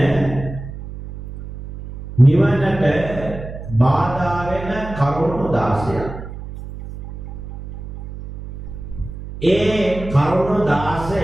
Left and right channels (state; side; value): noise; right; hum, 11 dB below the sound